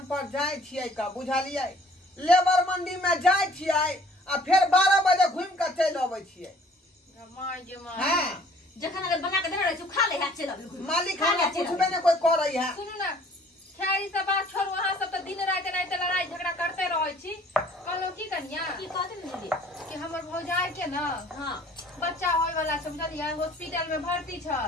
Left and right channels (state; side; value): normal; both; correlation 0.55